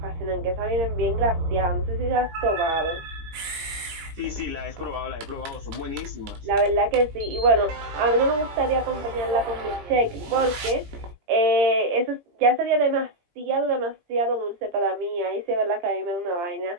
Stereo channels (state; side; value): late; left; 17 ms